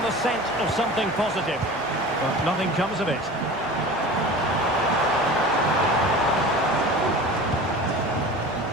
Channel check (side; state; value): both; normal; correlation 0.36